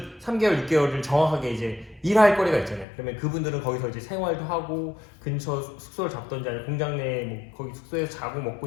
3개월, 6개월을 정확하게 이제 일할 거리가 있잖아요. 그러면 그분들은 거기서 이제 생활도 하고 근처 숙소를 잡던지 아니면 공장 내 거기 숙소에서 자고 먹고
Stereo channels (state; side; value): drops out; right; at 2.9 s